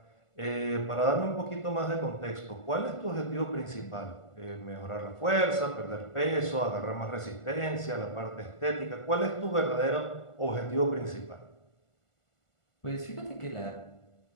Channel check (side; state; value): right; late; 1.5 ms